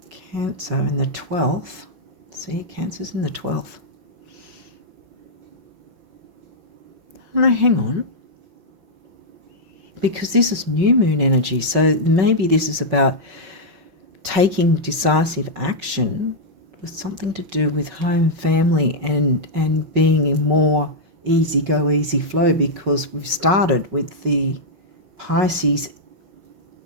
Cancer in the 12th. See, Cancer's in the 12th. No, hang on. Because this is new moon energy, so maybe this is about taking decisive action with something to do with home, family, and being more easy go, easy flow, because we've started with the Pisces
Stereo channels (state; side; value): late; left; 5.3 ms